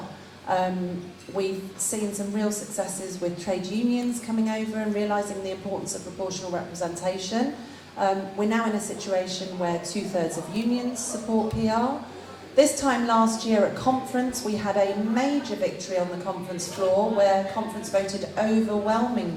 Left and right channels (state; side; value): identical; both; correlation 1.00